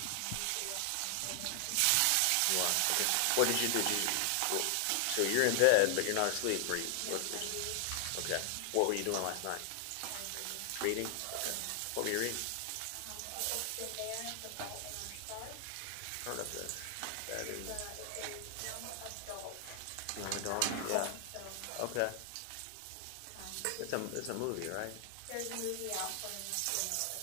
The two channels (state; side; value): different; both; correlation 0.00